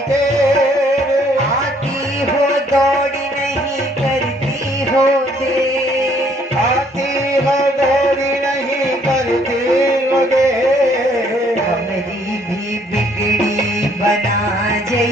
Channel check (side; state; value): both; normal; correlation 0.64